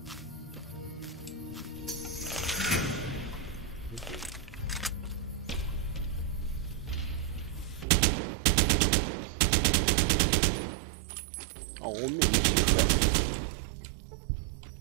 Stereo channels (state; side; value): drops out; left; at 7.9 s